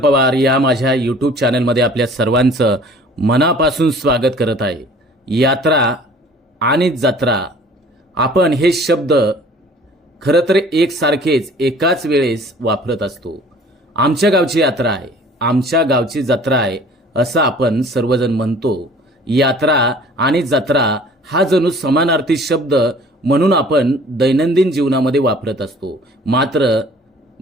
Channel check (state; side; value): normal; both; correlation 0.50